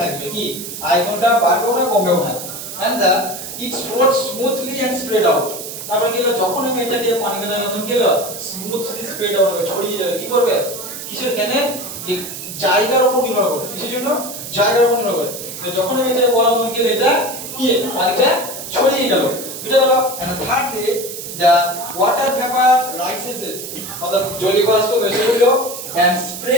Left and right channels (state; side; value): noise; right; hiss, 9 dB below the sound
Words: কি আয়তনটা বাড়বেও না কমবেও না and the it flows smoothly and spread out তারপরে কি হলো যখন আমি এটাকে পানি দেওয়ার তখন কি হলো স্মুথলি স্প্রেড আউট হবে ছড়িয়ে যাবে কি করবে কিসের কেন যে জায়গার উপর নির্ভর করে কিসের জন্য জায়গার উপর নির্ভর করে তো যখন আমি এটা বললাম তখন কি হলো এটা কি পানিটা ছড়িয়ে গেল বুঝা গেল and thirdly the water vapor rises অর্থাৎ জলীয় বাষ্প ভেসে উঠলো and